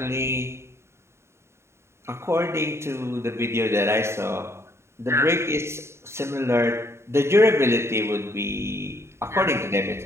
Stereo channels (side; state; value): left; late; 0.13 ms